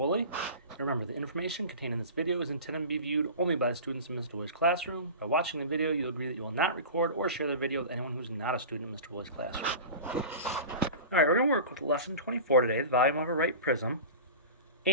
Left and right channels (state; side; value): inverted; both; correlation -0.34